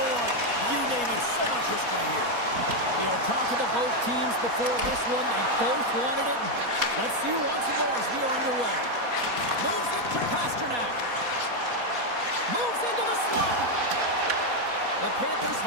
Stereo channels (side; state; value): left; late; 4.2 ms